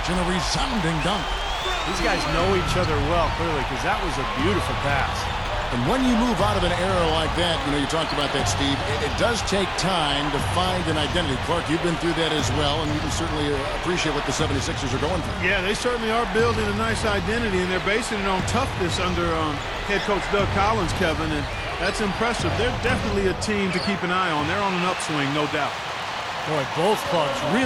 and a resounding dunk. These guys know each other well, clearly, because that was a beautiful pass. And when you move out of an error like that, you talked about that, Steve, it does take time to find an identity. Clark, you've been through that as well, and you can certainly appreciate what the 76ers are going through. Yeah, they certainly are building a nice identity, and they're basing it on toughness under head coach Doug Collins, Kevin, and that's impressive. They're definitely a team to keep an eye on. They're on an upswing, no doubt. Boy, both clubs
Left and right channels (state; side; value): identical; both; correlation 1.00